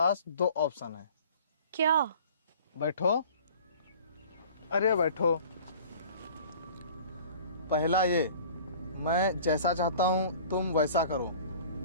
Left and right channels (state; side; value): inverted; both; correlation -0.46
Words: 2 ऑप्शन है। क्या? बैठो। अरे बैठो। पहला ये, मैं जैसा चाहता हूँ तुम वैसा करो,